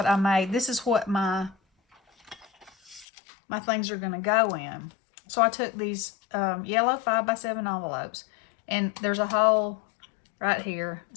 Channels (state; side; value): drops out; right; at 3.1 s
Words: I made. This is what my things are going to go in. So I took these yellow 5x7 envelopes, and there's a hole right here.